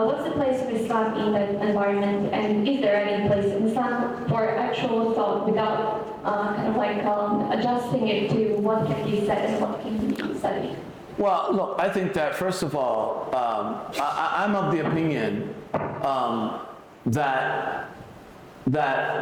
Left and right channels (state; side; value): identical; both; correlation 1.00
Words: the place of Islam in that environment, and is there any place in Islam for actual thought without kind of like adjusting it to what can be said and what can be studied? Well, look, I think that first of all, I'm of the opinion that